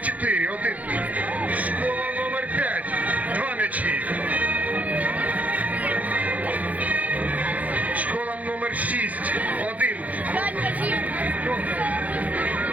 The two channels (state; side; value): late; left; 0.074 ms